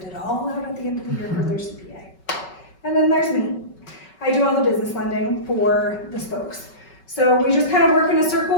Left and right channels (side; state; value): right; late; 5.3 ms